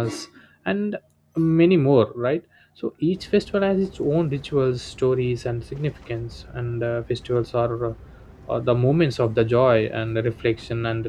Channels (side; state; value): both; identical; correlation 1.00